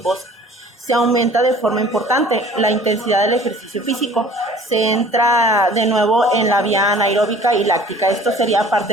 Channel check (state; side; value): normal; both; correlation 0.49